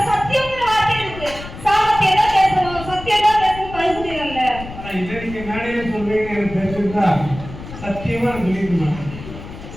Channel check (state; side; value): noise; left; rumble, 13 dB below the sound